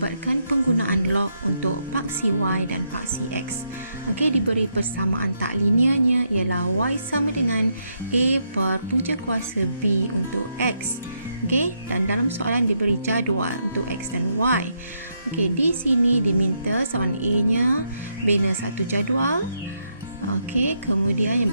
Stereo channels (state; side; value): inverted; both; correlation -0.78